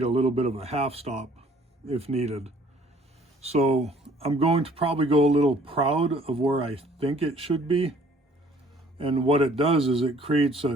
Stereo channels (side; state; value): both; normal; correlation 0.57